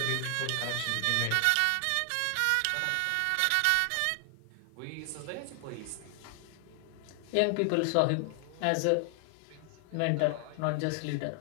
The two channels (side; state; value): both; different; correlation 0.00